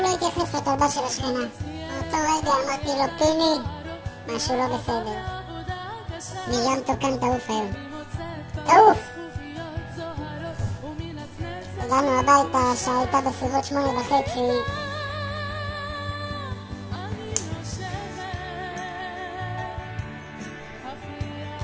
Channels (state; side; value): identical; both; correlation 1.00